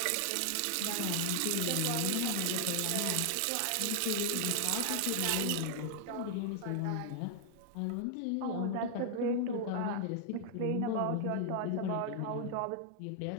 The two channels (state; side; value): different; both; correlation 0.00